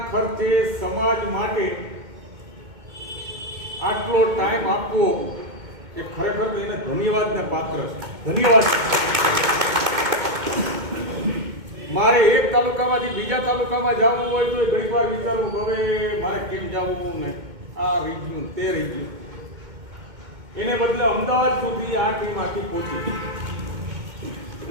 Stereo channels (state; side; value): late; left; 2.2 ms